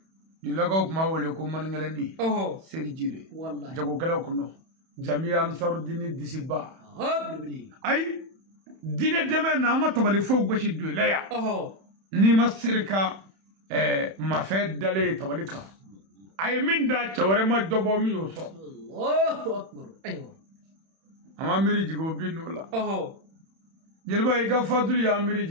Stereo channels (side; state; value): left; late; 31 ms